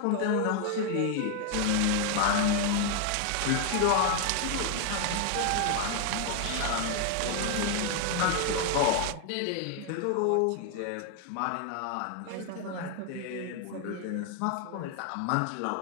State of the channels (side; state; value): both; different; correlation 0.00